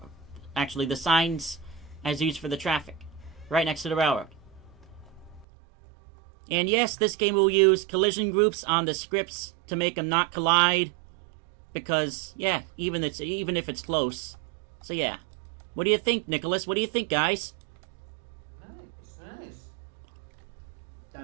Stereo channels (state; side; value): drops out; left; at 5.5 s